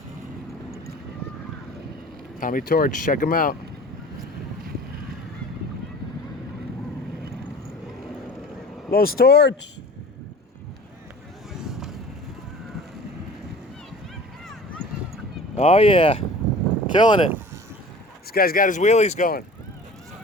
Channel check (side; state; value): both; normal; correlation 0.42